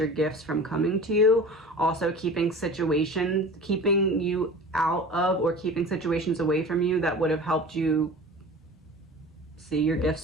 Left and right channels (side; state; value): both; normal; correlation 0.38